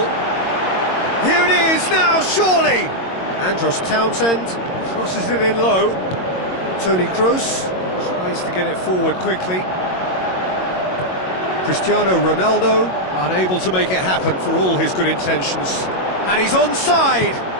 Here it is now, surely! Andros Townsend crosses it in low. Toni Kroos tries to get it forward quickly. Cristiano Ronaldo unable to make it happen for all his good intentions. And he's onside!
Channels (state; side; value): late; right; 22 ms